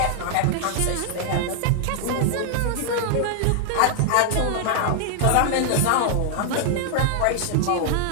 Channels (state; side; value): different; both; correlation 0.00